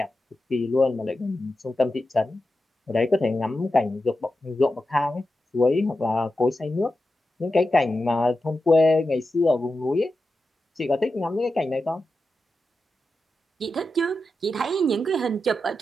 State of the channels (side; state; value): both; normal; correlation 0.91